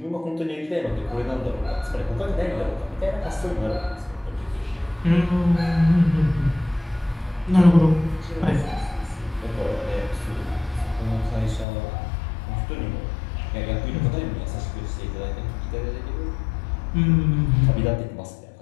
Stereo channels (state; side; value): drops out; right; at 11.7 s